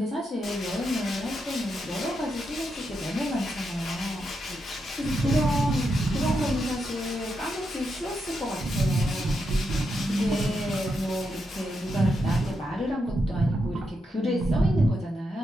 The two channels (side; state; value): both; normal; correlation 0.84